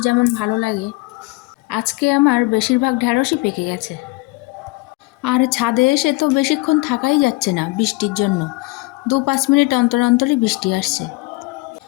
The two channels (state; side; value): quieter; right; 23.8 dB